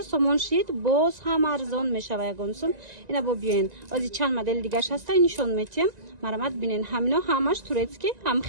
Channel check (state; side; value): late; left; 1.9 ms